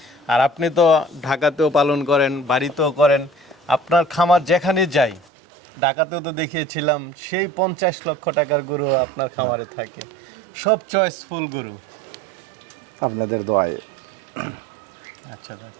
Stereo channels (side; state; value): left; drops out; at 5.2 s